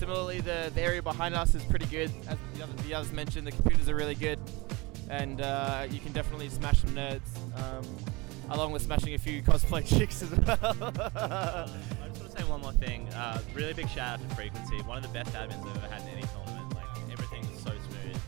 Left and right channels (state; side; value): quieter; left; 24.7 dB